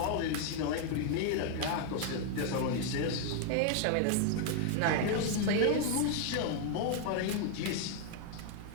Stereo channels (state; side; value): different; both; correlation 0.00